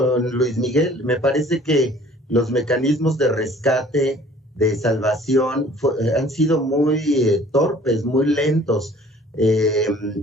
Luis Miguel. Me parece que los mecanismos de rescate, de salvación, han sido muy torpes, muy lentos.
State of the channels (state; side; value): normal; both; correlation 0.52